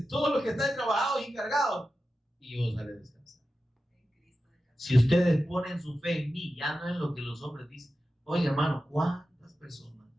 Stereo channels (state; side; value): normal; both; correlation 0.92